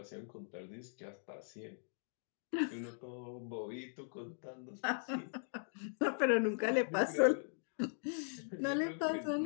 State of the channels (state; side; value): silent; right; digital silence